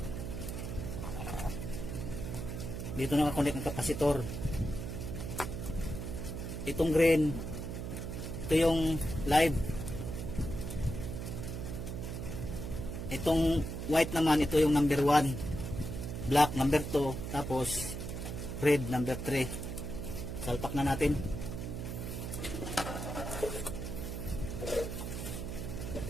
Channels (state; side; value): noise; right; hum, 5 dB below the sound